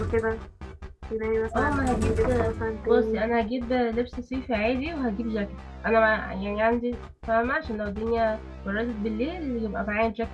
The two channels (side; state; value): both; identical; correlation 1.00